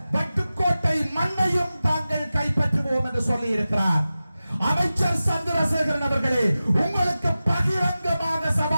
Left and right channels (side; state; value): both; inverted; correlation -0.95